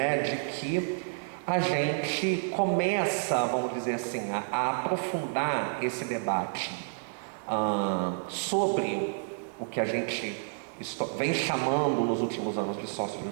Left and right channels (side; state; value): left; silent; digital silence